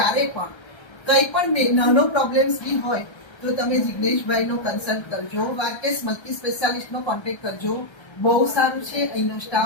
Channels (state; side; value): late; right; 1.3 ms